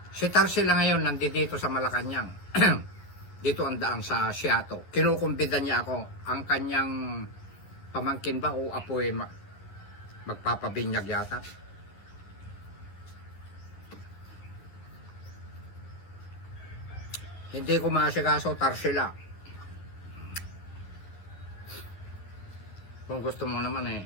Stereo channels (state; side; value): late; right; 11 ms